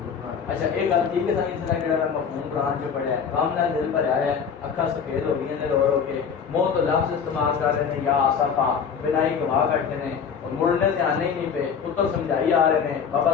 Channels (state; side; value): quieter; right; 6.7 dB